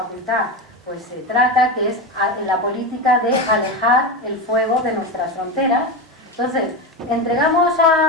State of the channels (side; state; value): both; normal; correlation 0.17